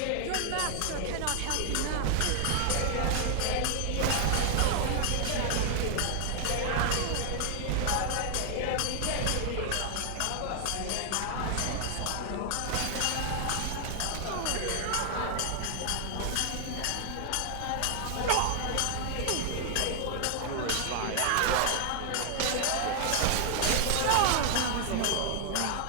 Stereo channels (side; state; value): both; different; correlation 0.00